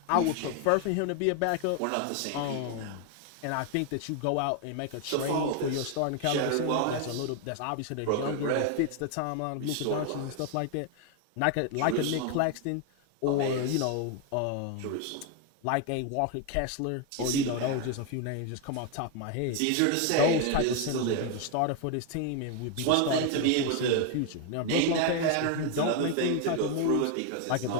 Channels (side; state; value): both; different; correlation 0.01